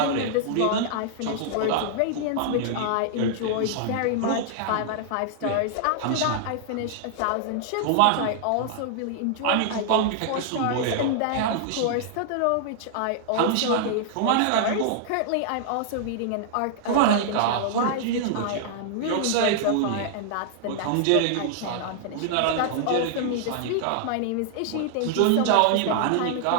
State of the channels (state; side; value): different; both; correlation -0.01